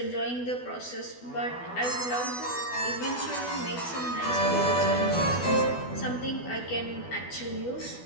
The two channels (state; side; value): late; right; 12 ms